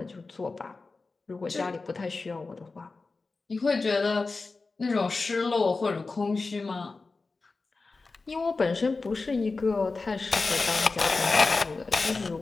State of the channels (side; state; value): right; quieter; 3.9 dB